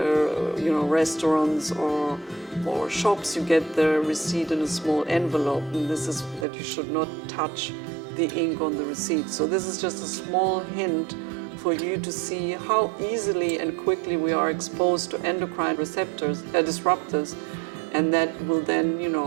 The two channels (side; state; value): left; drops out; at 6.5 s